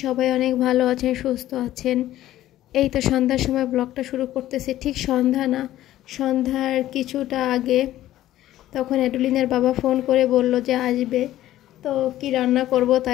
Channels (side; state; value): right; quieter; 13.9 dB